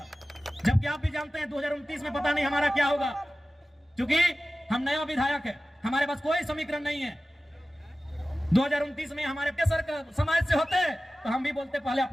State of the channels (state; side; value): normal; both; correlation 0.96